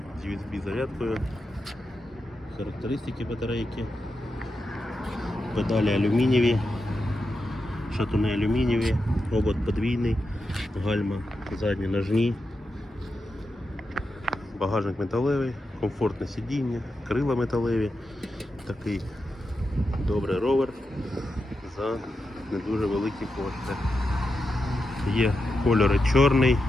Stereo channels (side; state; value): both; normal; correlation 0.88